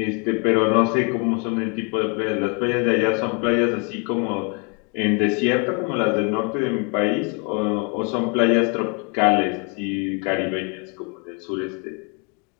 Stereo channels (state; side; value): quieter; right; 34.5 dB